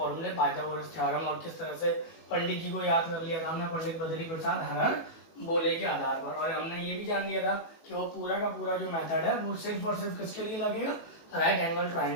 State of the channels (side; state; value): right; late; 18 ms